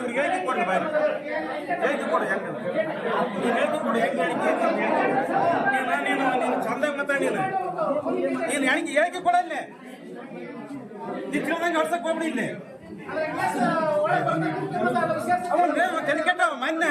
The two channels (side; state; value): both; identical; correlation 1.00